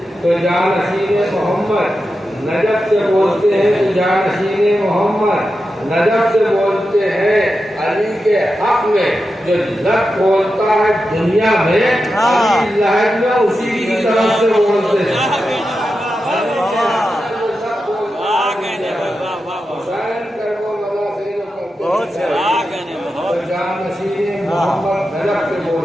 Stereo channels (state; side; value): normal; both; correlation 0.90